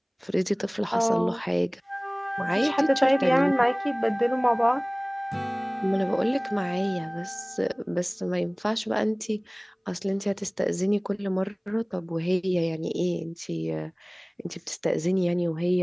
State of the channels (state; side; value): identical; both; correlation 1.00